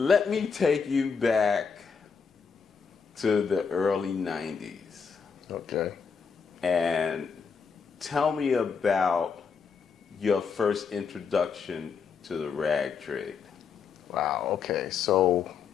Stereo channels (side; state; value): right; quieter; 5.9 dB